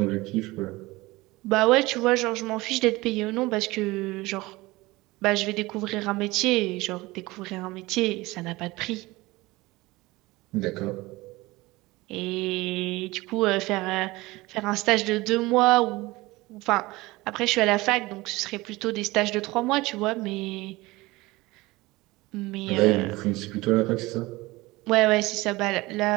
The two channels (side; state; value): left; quieter; 20.8 dB